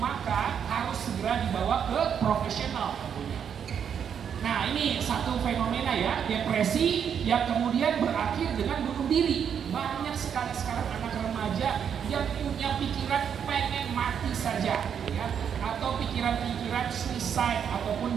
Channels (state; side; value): quieter; left; 7.9 dB